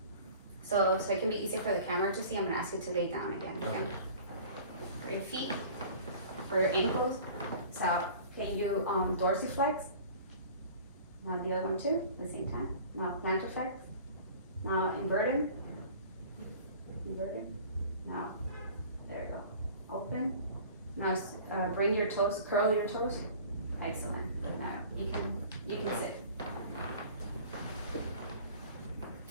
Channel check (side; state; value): both; inverted; correlation -0.44